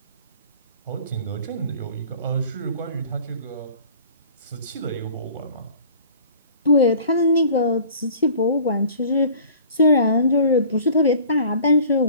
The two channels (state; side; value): inverted; both; correlation -0.47